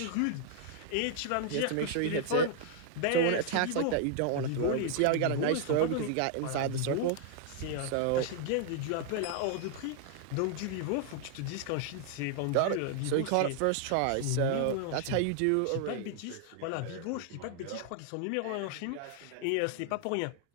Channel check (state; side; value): different; both; correlation 0.00